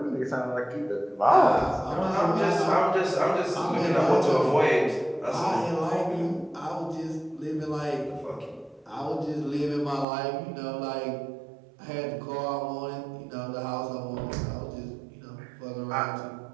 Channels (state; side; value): drops out; left; at 10.1 s